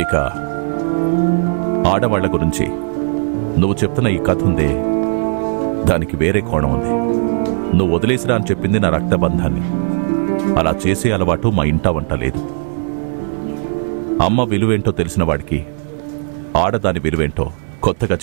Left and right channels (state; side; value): silent; left; 62 dB below the other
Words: ఇక ఆడవాళ్ల గురించి నువ్వు చెప్తున్న ఈ కథ ఉందే, దానికి వేరే కోణం ఉంది. నువ్వు వదిలేసిరా అని చెప్పింది నా రక్తబంధాన్ని. అలా చేసే అలవాటు మా ఇంట వంట లేదు. అమ్మ విలువేంటో తెలిసిన వాడికి ఆడదాని విలువేంటో కొత్తగా